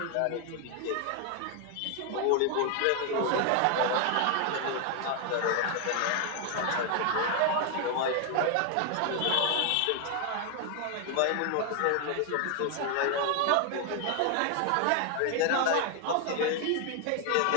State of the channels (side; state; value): both; different; correlation 0.01